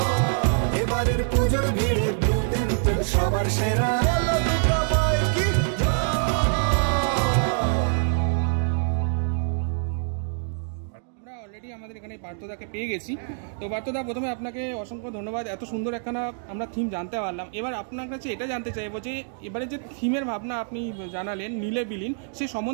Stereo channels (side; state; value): left; silent; digital silence